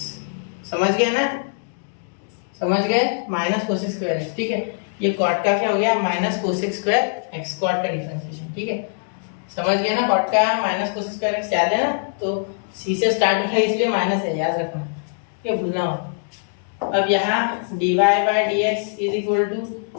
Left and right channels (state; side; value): silent; right; digital silence